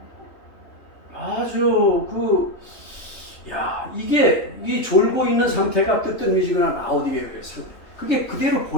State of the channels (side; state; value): right; late; 3.4 ms